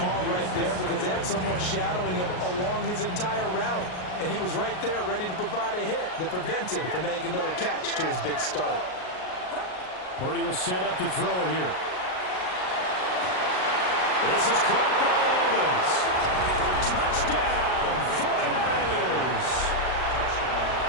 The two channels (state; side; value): late; right; 38 ms